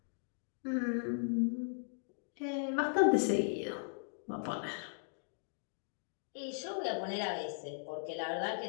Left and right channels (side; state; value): right; silent; digital silence